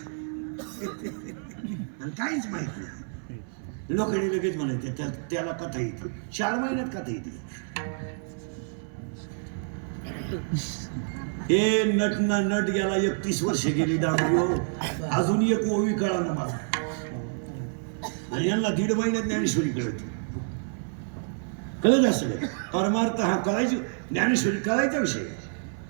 आणि काहीच माहित नाही. लोकांनी लगेच म्हणायचे त्याला कथा येते, 4 महिन्यात कथा येते. हे नट ना नट गेला, 31 वर्ष गेली डांबरी, अजून एक ओवी कळा ना मला, आणि यांना 1.5 महिन्यात ज्ञानेश्वरी कळत. कळत असं काय परमार्थ हा कळायची, ज्ञानेश्वरी कळायचा विषय,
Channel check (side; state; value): left; silent; 59 dB below the other